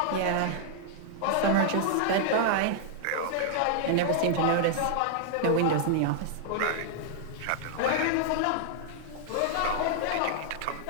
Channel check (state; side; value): different; both; correlation -0.01